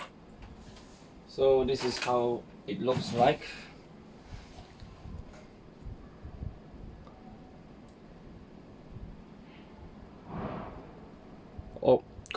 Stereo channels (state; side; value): identical; both; correlation 1.00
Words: So this is how it looks like. Oh,